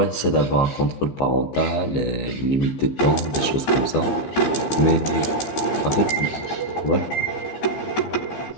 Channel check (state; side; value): late; right; 15 ms